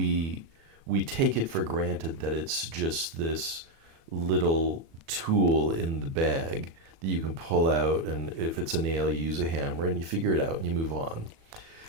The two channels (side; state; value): left; late; 36 ms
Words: take it for granted that it's just this little tool in the bag that you can pull out, and if it's a nail, you use a hammer and you figure it out and you move on.